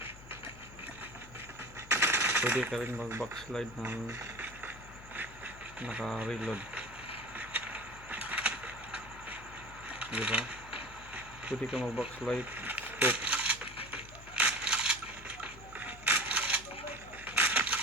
pwede ka rin mag backslide ng naka-reload. Diba? Pwede ka mag backslide, scope.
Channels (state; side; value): noise; left; hum, 17 dB below the sound